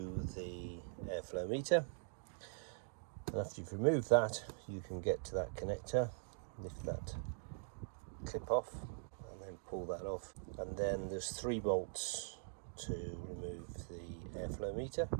the airflow meter. And after you've removed that, you can get to that connector, lift that clip off, and then pull that off. And then there's 3 bolts to remove the airflow meter.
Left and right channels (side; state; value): left; silent; digital silence